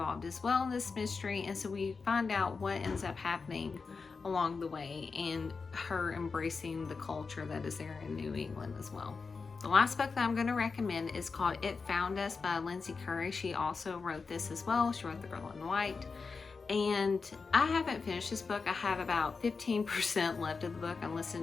as well in this mystery, and so we find out what ends up happening along the way, and her embracing the culture that is there in New England as well. The last book that I'm going to recommend is called It Found Us by Lindsay Curry. She also wrote this as well. She wrote The Girl in White. And I haven't finished this book. I have about 15% left of the book I'm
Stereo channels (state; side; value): quieter; right; 4.7 dB